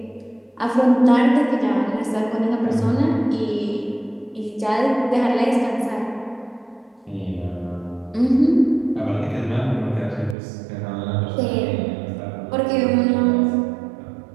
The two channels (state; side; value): drops out; left; at 10.4 s